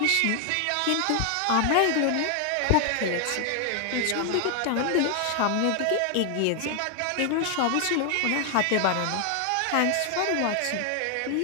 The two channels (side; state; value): both; different; correlation 0.00